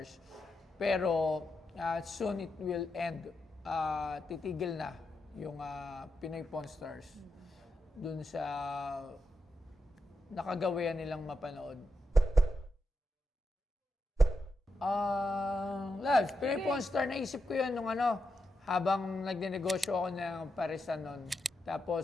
Pero soon it will end. Titigil na yung Pinoy Pawn Stars doon sa nakagawian nilang mapanood. Labs, Pinoy Pawn Stars, naisip ko yun nung habang nagnenegosyo ako ng parisan nun. Tapos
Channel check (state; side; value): normal; both; correlation 0.86